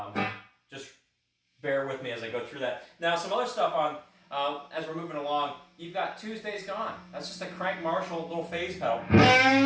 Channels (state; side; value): identical; both; correlation 1.00